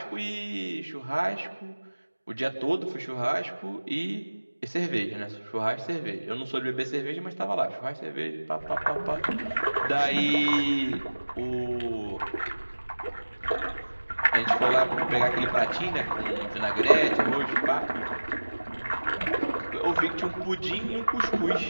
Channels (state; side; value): inverted; both; correlation -1.00